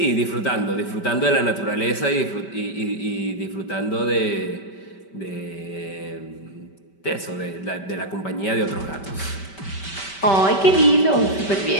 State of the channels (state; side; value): late; right; 5.1 ms